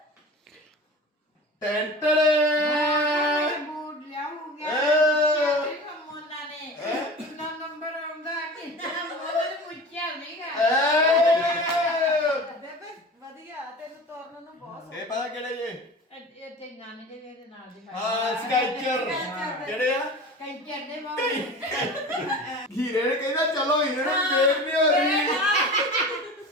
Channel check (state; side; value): normal; both; correlation 0.35